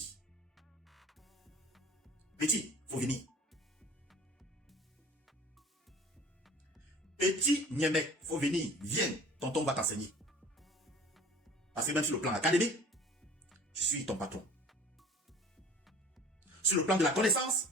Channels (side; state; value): both; normal; correlation 0.46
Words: Petit, faut venir. Petit Niemek, faut venir. Viens, tonton va t'enseigner. Parce que même sur le plan académique, je suis ton patron. Sur le plan de la connaissance,